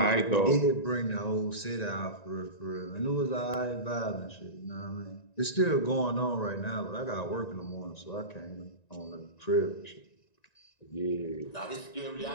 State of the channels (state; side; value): late; right; 1.9 ms